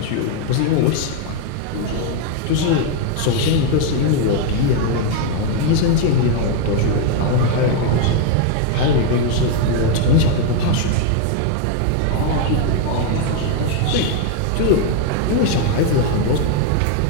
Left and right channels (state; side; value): different; both; correlation 0.01